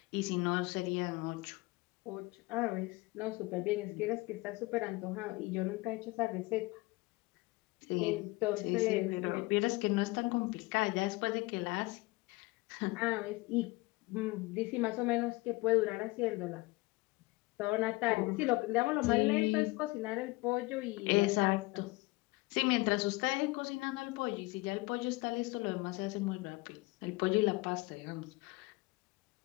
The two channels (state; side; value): quieter; right; 22.8 dB